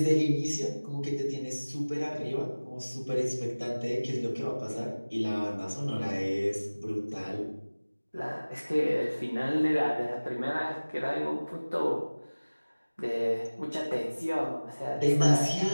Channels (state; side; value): inverted; both; correlation -1.00